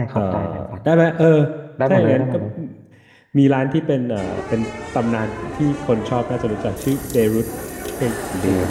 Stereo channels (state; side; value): identical; both; correlation 1.00